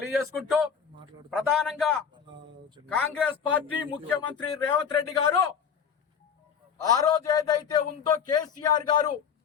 ప్రధానంగా కాంగ్రెస్ పార్టీ ముఖ్యమంత్రి రేవంత్ రెడ్డి గారు ఆ రోజు ఏదైతే ఉందో కేసీఆర్ గారు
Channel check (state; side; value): quieter; right; 7.1 dB